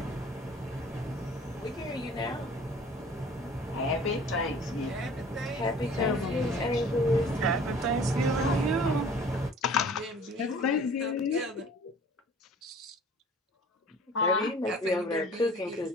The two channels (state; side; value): normal; both; correlation 0.48